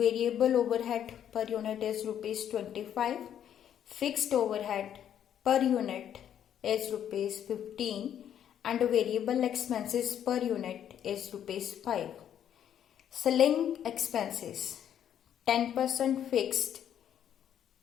overhead per unit is rupees 25. Fixed overhead per unit is rupees 15 and variable expenses per unit is rupees 5. Selling expenses 10% fixed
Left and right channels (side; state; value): right; quieter; 9.8 dB